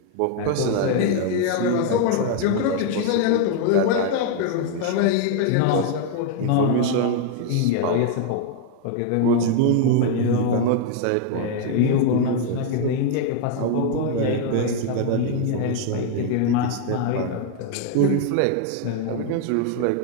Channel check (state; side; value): different; both; correlation 0.00